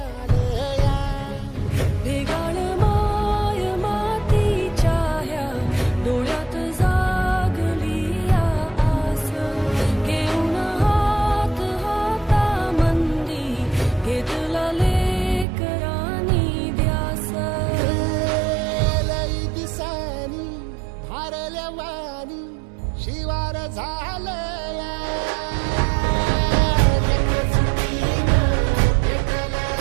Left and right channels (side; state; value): left; drops out; at 15.5 s